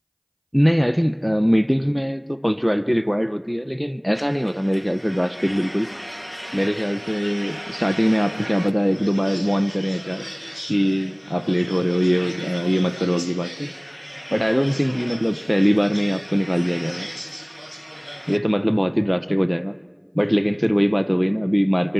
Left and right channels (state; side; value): identical; both; correlation 1.00